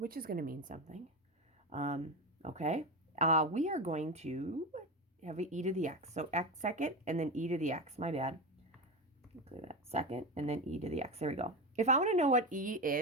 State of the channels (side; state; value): both; normal; correlation 0.19